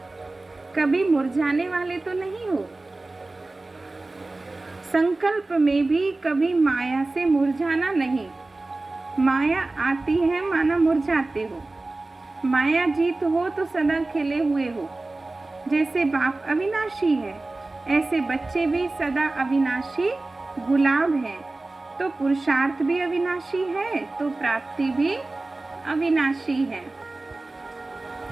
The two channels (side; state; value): left; quieter; 3.1 dB